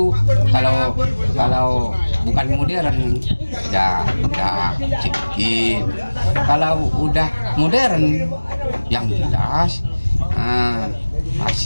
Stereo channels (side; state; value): both; inverted; correlation -1.00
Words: kalau bukan modern ya sedikit. Kalau udah modern yang jelas